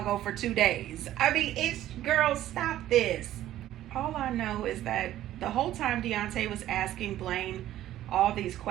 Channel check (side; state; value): left; quieter; 13.3 dB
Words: for 2 days. I mean, girl, stop this. All I know is that the whole time Deontay was asking Blaine all these